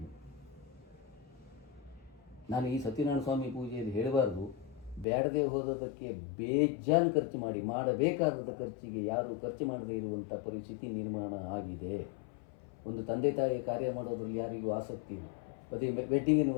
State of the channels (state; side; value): drops out; right; at 5.1 s